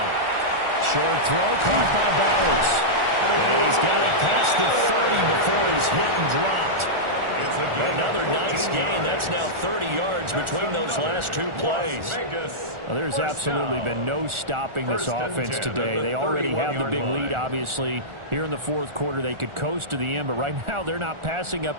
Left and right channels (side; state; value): left; late; 1.4 ms